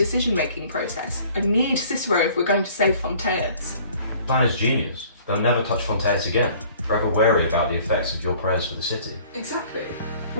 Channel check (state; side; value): inverted; both; correlation -0.53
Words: process. I need Cicero if we're going to save Fontaines. The plan is genius. They'll never touch Fontaines again, forever wary about the effects of your prayers for the city. Exactly.